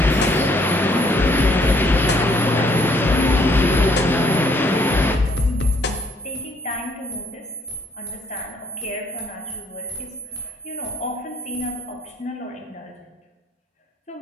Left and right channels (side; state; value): both; normal; correlation 0.66